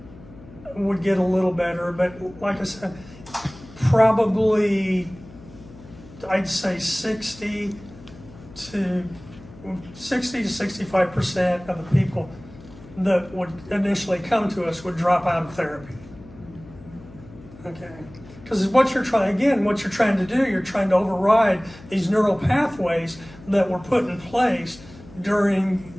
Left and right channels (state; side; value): noise; left; hum, 20 dB below the sound